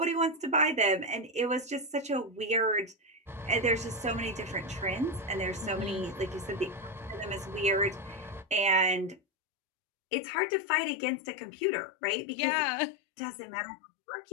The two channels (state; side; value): drops out; right; at 9.2 s